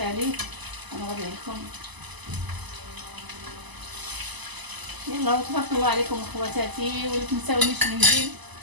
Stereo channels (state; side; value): late; left; 1.0 ms